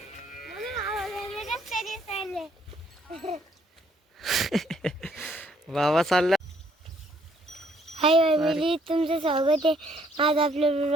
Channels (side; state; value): both; normal; correlation 0.66